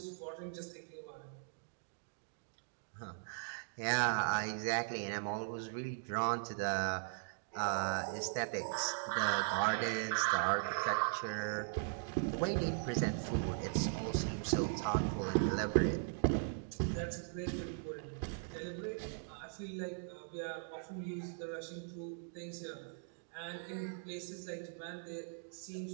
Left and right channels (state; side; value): silent; left; digital silence